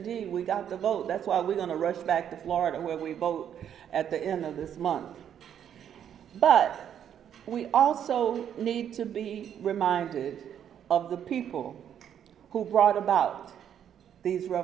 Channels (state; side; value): quieter; left; 9.3 dB